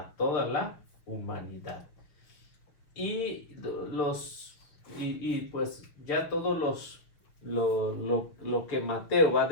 toda la humanidad. Y pues ya todos lo que Mateo va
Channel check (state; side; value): late; right; 6.1 ms